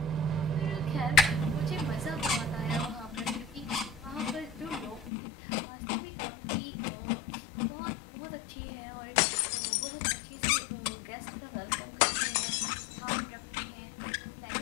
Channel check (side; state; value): right; drops out; at 5.1 s